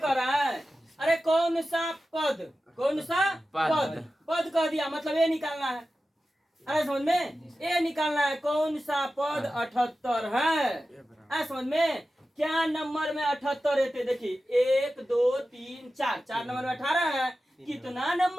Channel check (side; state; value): both; normal; correlation 0.94